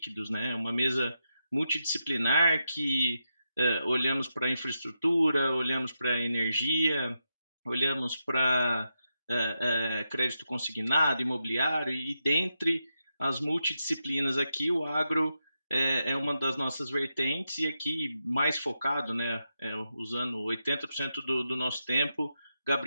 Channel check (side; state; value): both; inverted; correlation -0.86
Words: né? Uma mesa multidisciplinar que olhamos para a infraestrutura, olhamos para a energia, olhamos para crédito consignado, imobiliário, e dentre as multidisciplinas aqui, o agro é uma das nossas vertentes, e aqui mais focado, né, usando 80% do nosso tempo,